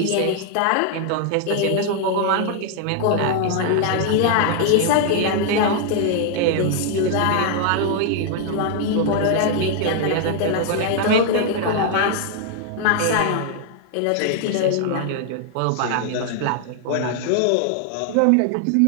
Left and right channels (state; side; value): different; both; correlation 0.00